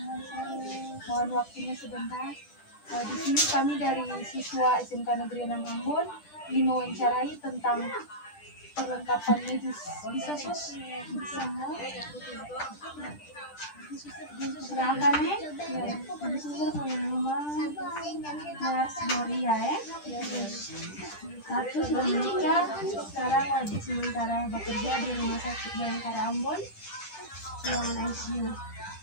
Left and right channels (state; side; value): late; right; 10 ms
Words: Mohon waktunya sebentar. Di sini kami dari siswa SMK Negeri 6 Ambon ingin mewawancarai tentang perlengkapan medis. Bisa sus? Bisa. Silakan ya. Di sini punya nama Nurse Gloria ya. Satu sudah menikah, sekarang lagi sementara bekerja di Rumah Sakit Bayangkara Ambon, ruangan ICU.